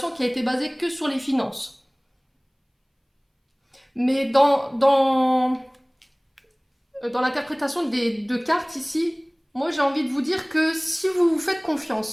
qui a été basée que sur les finances. Mais dans l'interprétation des deux cartes ici, moi j'ai envie de vous dire que si vous vous faites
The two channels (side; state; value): both; identical; correlation 1.00